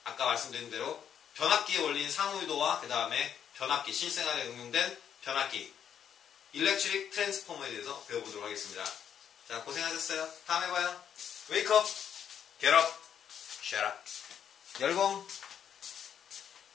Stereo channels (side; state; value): right; quieter; 8.7 dB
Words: 아까 말씀드린 대로 변압기에 올린 상호유도와 그 다음에 변압기, 실생활에 응용된 변압기 일렉트릭 트랜스포머에 대해서 배워보도록 하겠습니다. 자, 고생하셨어요. 다음에 봐요. Wake up, get up, shut up. 열공.